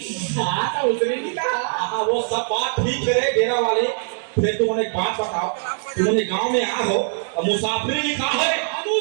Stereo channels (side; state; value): left; silent; digital silence